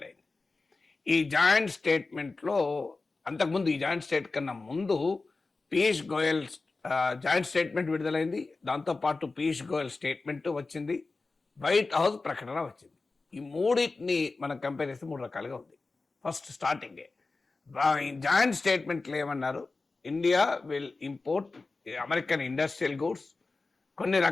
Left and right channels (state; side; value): quieter; right; 3.7 dB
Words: ఈ జాయింట్ స్టేట్మెంట్లో అంతకుముందు ఈ జాయింట్ స్టేట్ కన్నా ముందు పీయూష్ గోయల్ జాయింట్ స్టేట్మెంట్ విడుదలైంది. దాంతోపాటు పీయూష్ గోయల్ స్టేట్మెంట్ వచ్చింది, వైట్ హౌస్ ప్రకటన వచ్చింది. ఈ మూడింటిని మనం కంపేర్ చేస్తే 3 రకాలుగా ఉంది. ఫస్ట్ స్టార్టింగే జాయింట్ స్టేట్మెంట్లో ఏమన్నారు, India will import American industrial goods, కొన్ని